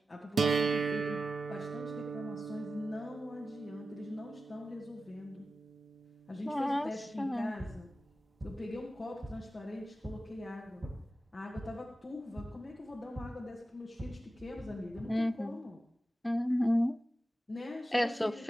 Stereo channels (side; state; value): both; normal; correlation 0.93